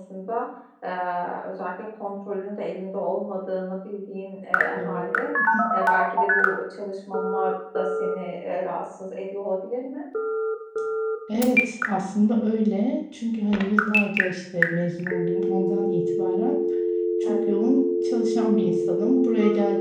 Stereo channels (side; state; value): both; identical; correlation 1.00